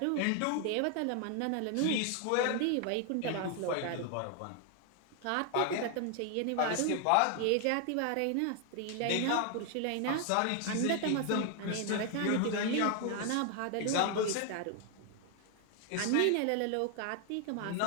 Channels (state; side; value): different; both; correlation 0.00